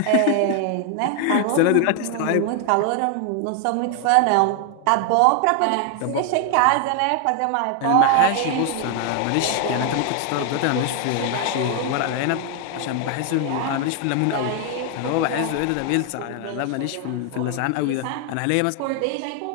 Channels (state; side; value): different; both; correlation 0.00